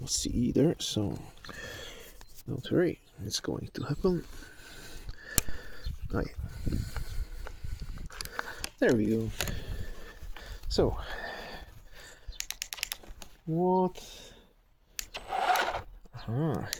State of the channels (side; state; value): both; identical; correlation 1.00